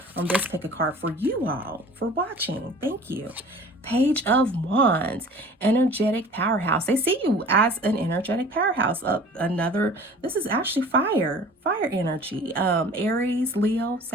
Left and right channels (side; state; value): both; normal; correlation 0.45